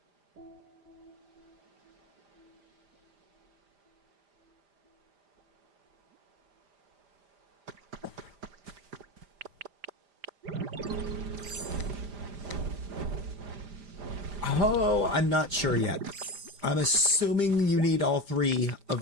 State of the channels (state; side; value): late; left; 5.0 ms